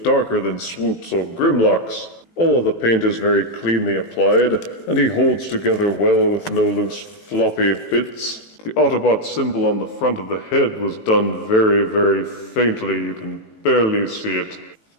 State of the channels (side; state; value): right; late; 18 ms